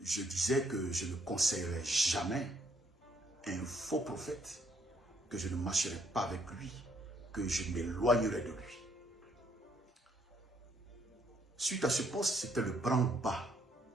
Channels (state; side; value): normal; both; correlation 0.68